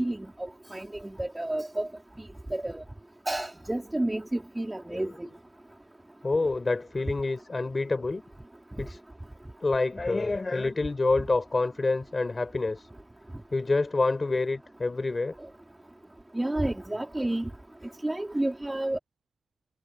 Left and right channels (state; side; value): normal; both; correlation 0.98